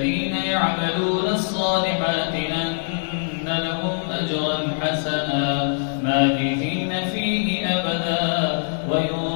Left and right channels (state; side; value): silent; right; digital silence